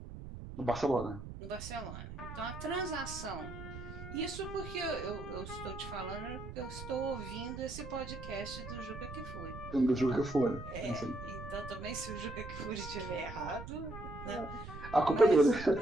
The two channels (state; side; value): noise; right; rumble, 10 dB below the sound